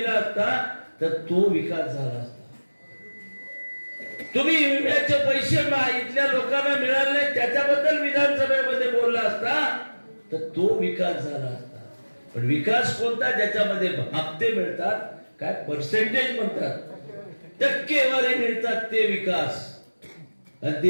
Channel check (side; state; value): both; inverted; correlation -1.00